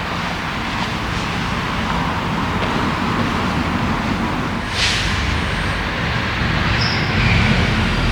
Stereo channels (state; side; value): identical; both; correlation 1.00